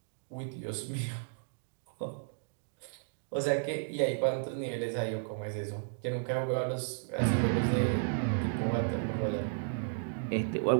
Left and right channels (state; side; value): silent; left; digital silence